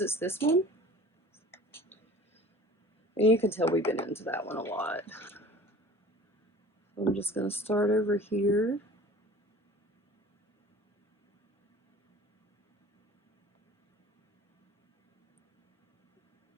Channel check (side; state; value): both; normal; correlation 0.45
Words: this one. And you can tell we've been into that one a lot. I'm just going to start over here.